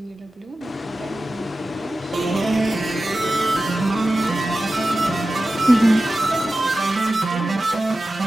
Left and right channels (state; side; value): normal; both; correlation 0.94